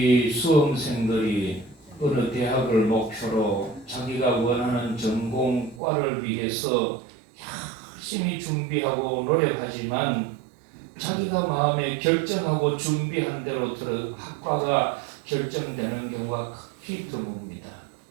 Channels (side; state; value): left; drops out; at 5.8 s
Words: 수험생들이 어느 대학을 목표로 자기가 원하는 전공과를 위해서 열심히 준비하고 노력하지만 자기가 마음에 결정하고 준비한 대로 학과가 결정되는 경우가 극히 드뭅니다.